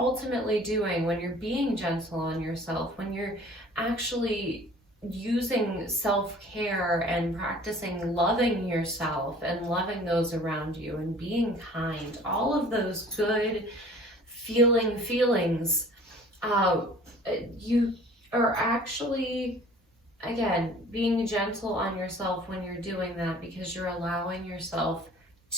doing when you're being gentle on yourself, when you're actually using self-care and practicing loving yourself and loving those around you and being kind, all of those good feelings, you are actually, again, being gentle on yourself when you're doing that, because you're allowing yourself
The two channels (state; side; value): normal; both; correlation 0.49